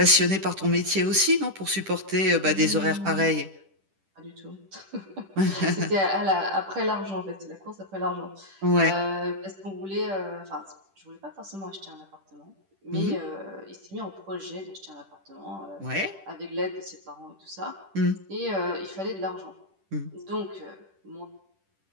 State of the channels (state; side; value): late; left; 10 ms